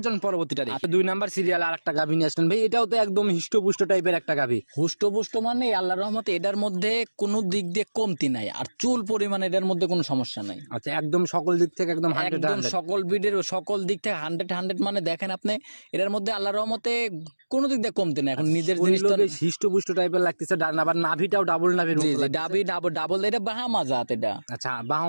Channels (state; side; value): inverted; both; correlation -1.00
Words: চলুন পরবর্তীটা দেখি। 2 নাম্বার সিরিয়াল আর একটা গাভী নিয়ে আসলেন ভাই, এটাও তো একদম হিষ্টপুষ্ট টাইপের একটা গাভী। হুষ্টপুষ্ট মানে আল্লাহর রহমতে এটার মধ্যে কোনো দিক দিয়ে কমতি নাই, আর চুল পরিমাণ এটার মধ্যে কোনো সমস্যা নাই। আচ্ছা, একদম সকল দিক থেকে একদম 100 একদম সকল দিক থেকে 100 মানে দেখেন আপনি এটার মধ্যে আল্লাহর রহমতে কোনো দিক দিয়ে কমতি নাই। এখন নিজের জিনিসটা হিষ্টপুষ্ট টাইপের লাগতেছে, আবার নাভিটাও ডাবল নাভির জি মতো জি, লাগতেছে। ডাবল এটা বাহামা জাত। এটা আচ্ছা,